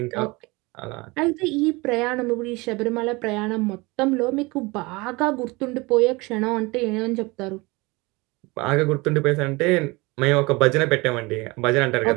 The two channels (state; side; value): quieter; left; 24.3 dB